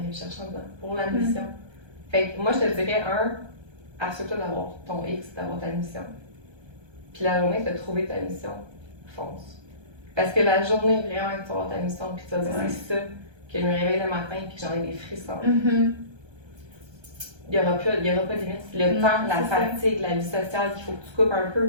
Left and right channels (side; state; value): left; late; 1.3 ms